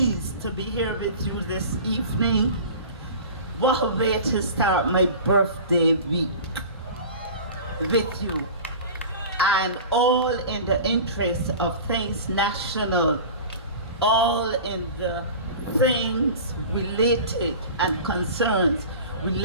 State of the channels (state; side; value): inverted; both; correlation -0.37